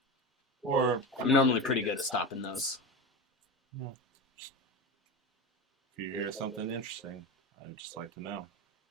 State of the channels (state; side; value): normal; both; correlation 0.22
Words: Or I'm normally pretty good at stopping those. if you hear something interesting, I'd just like to know.